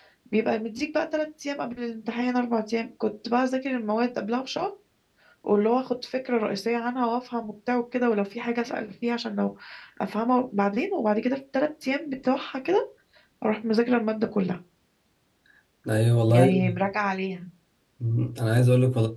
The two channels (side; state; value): both; identical; correlation 1.00